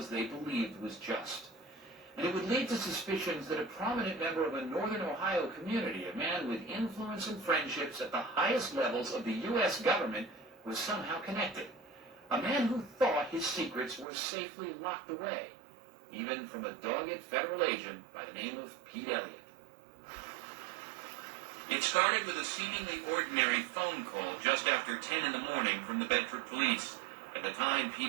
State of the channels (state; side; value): drops out; left; at 14.1 s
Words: they believed was just. And it would lead to suspicions that a prominent member of a northern Ohio community, a man with influence and friendships at the highest levels of the U.S. government, was somehow connected. A man who thought his secrets were safely locked away, even from a dogged federal agent by the name of Pete Elliott. It started with a seemingly ordinary phone call just after 10 in the morning from the Bedford police. At the time,